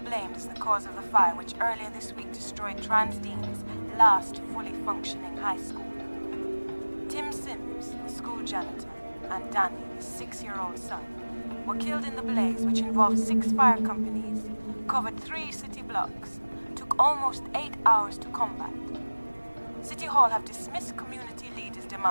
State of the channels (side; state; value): both; inverted; correlation -1.00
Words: as the cause of the fire which earlier this week destroyed Transdean's last fully functioning high school. Tim Sims, the school janitor, and Danny, his 6-year-old son, were killed in the blaze which involved 6 fire companies, covered 3 city blocks, took almost 8 hours to combat. City Hall have dismissed community leaders'